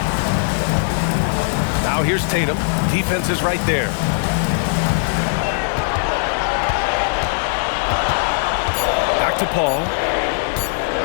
Now here's Tatum. Defense is right there. Back to Paul.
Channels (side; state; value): right; silent; digital silence